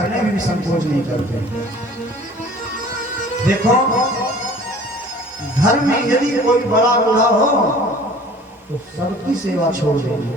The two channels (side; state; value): both; normal; correlation 0.48